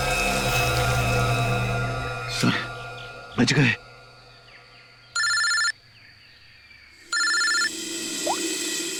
सर, बच गए।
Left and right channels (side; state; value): both; identical; correlation 1.00